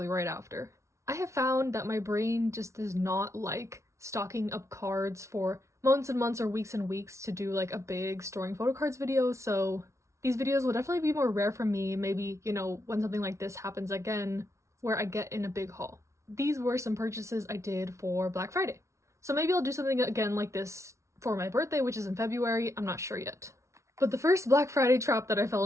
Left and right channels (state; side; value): late; left; 0.14 ms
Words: right after. I have found that my brain just does not like stocking up cards for months and months or weeks and weeks to do like a big storing photo cards video, so these videos will definitely be more rare for me, maybe, you know, when something like this happens again where I get in a big haul. These were some purchases I did for Black Friday. So maybe I'll do something again like this for my birthday, which is in February. I'm not sure yet. But the first Black Friday trap that I fell